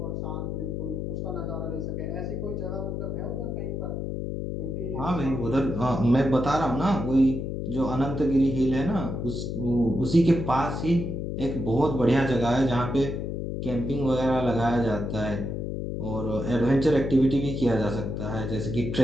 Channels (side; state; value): left; noise; hum, 3 dB below the sound